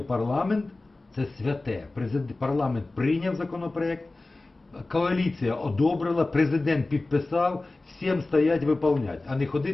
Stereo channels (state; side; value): quieter; right; 3.1 dB